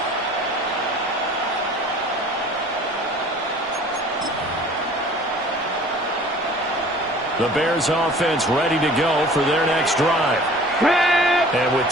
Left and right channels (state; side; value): normal; both; correlation 0.48